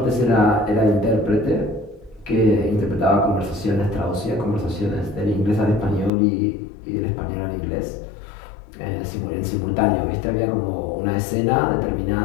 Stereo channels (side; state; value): right; drops out; at 6.1 s